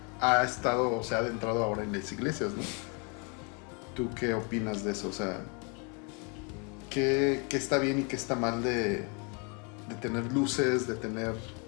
estado, o sea, ha adentrado ahora en las iglesias, ¿no? ¿Tú qué opinas de eso? O sea, ¿qué está bien y qué está mal de tener luces, de tener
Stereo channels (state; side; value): quieter; right; 34.3 dB